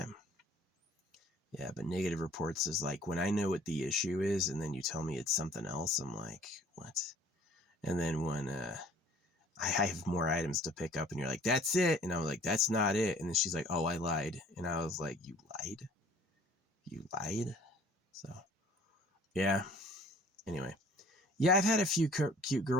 Yeah, but negative reports is like when I know what the issue is and then you tell me it's something else, I'm like, what? And then when I have more items to pick up and you're like, that's it. And I was like, that's not it. And then she's like, oh, I lied. And I was like, you lied? You lied? So, yeah. Anyway. Yeah, I've had a few cute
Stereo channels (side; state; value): both; normal; correlation 0.52